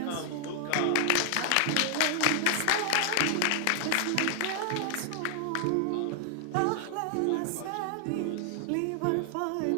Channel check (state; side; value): different; both; correlation 0.00